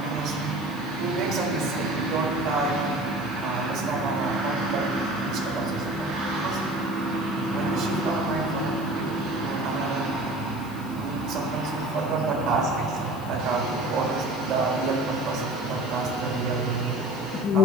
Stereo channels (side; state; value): left; noise; hiss, 21 dB below the sound